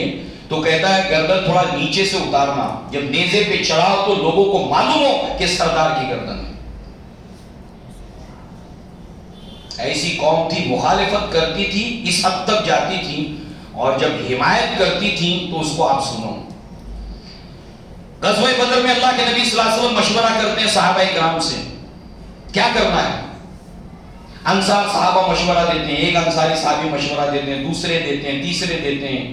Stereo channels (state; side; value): identical; both; correlation 1.00